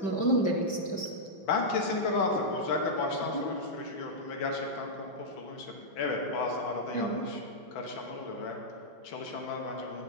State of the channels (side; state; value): right; late; 5.1 ms